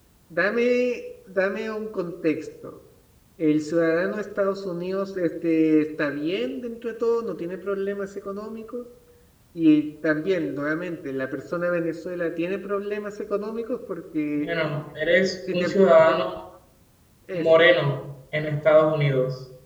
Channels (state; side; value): identical; both; correlation 1.00